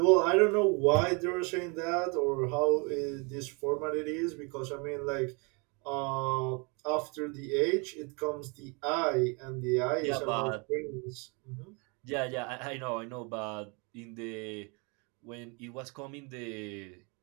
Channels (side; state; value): left; quieter; 31.9 dB